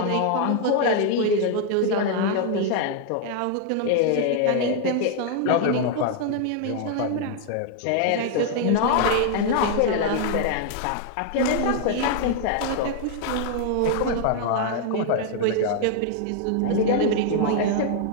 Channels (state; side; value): different; both; correlation 0.00